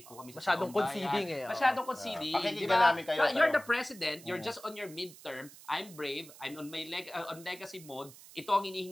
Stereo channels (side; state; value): right; noise; hiss, 19 dB below the sound